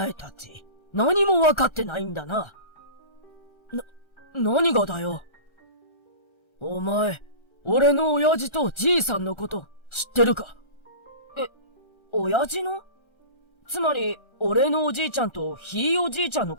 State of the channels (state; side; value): late; right; 1.3 ms